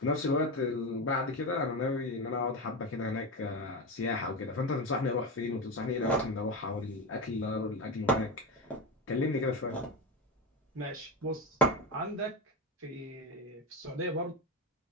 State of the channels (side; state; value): both; normal; correlation 0.17